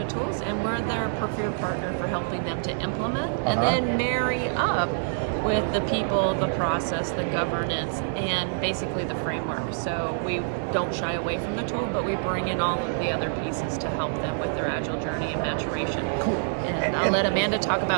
tools, and we're their preferred partner for helping them to implement and then marry up with the people, the process, the governance, and basically the framework. So we don't shy away from the tool, but we bring in all of the other pieces to help them with their Agile journey and maturation. Cool. And I'll let Amanda talk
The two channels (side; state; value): left; silent; digital silence